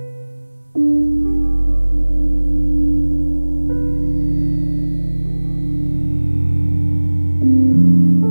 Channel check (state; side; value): inverted; both; correlation -1.00